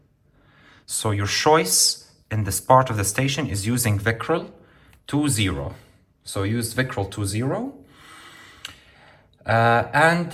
So your choice in this part of the station is using Vicryl 2.0. So use Vicryl 2.0. And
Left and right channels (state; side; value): identical; both; correlation 1.00